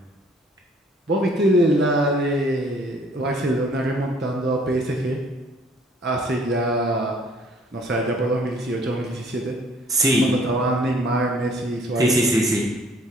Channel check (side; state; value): both; normal; correlation 0.58